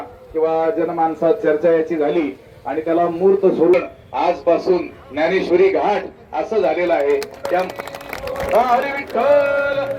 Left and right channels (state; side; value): identical; both; correlation 1.00